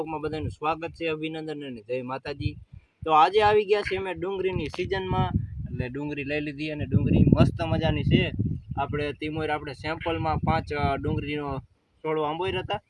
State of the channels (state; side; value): identical; both; correlation 1.00